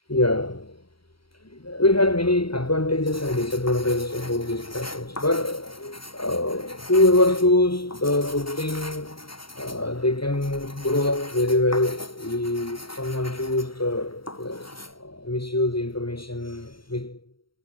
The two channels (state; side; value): late; right; 0.74 ms